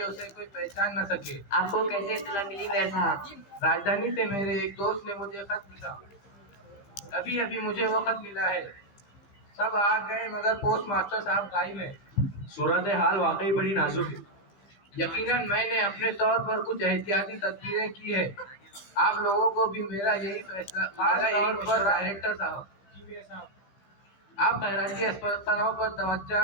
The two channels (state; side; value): late; right; 15 ms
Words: उसे कोई पहचान न सके। आपको कैसे इत्तला मिली मेयर साहब? राजधानी से मेरे एक दोस्त ने मुझे खत लिखा। अभी अभी मुझे वो खत मिला है। सब आ गए मगर पोस्ट मास्टर साहब गायब है। सूरत हाल वाकई बड़ी नाजुक है। यकीनन मैंने अपने तौर पर कुछ एहतियाती तदबीरें की है। आप लोगों को भी मेरा यही फैसला, खास तौर पर डायरेक्टर साहब, आप खैराती अस्पतालों पर तवज्जो